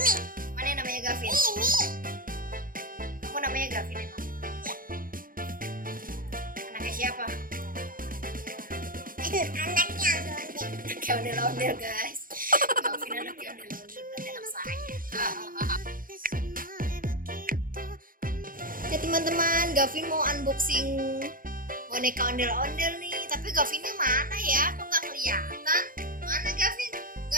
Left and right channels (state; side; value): late; left; 0.41 ms